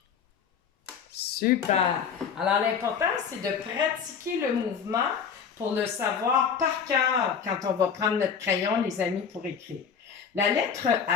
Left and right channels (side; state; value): right; quieter; 6.8 dB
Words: Super! Alors, l'important, c'est de pratiquer le mouvement pour le savoir par cœur quand on va prendre notre crayon, les amis, pour écrire. La lettre